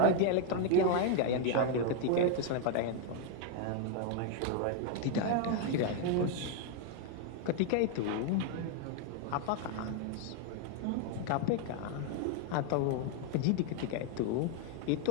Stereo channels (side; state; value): both; different; correlation 0.00